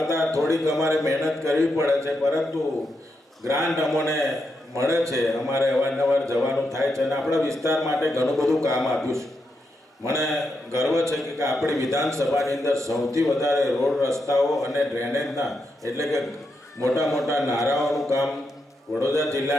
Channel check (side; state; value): both; normal; correlation 0.83